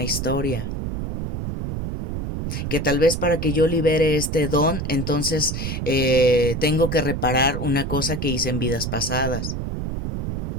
historia. Que tal vez para que yo libere este don, entonces tengo que reparar una cosa que hice en vidas pasadas.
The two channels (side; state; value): right; noise; rumble, 2 dB below the sound